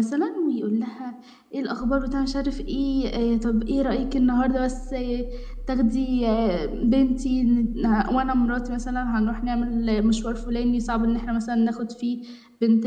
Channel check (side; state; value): both; identical; correlation 1.00